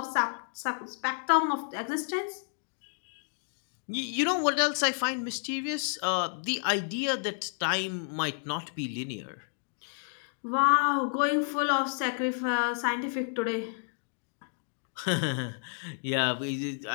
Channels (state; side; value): silent; right; 57 dB below the other